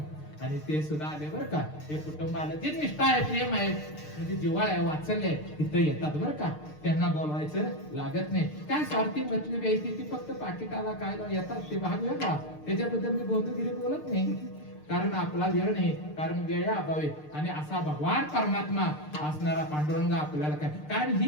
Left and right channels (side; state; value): right; late; 6.6 ms